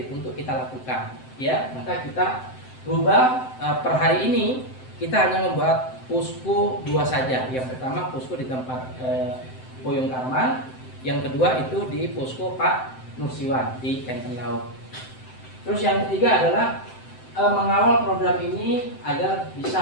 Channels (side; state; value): right; late; 7.8 ms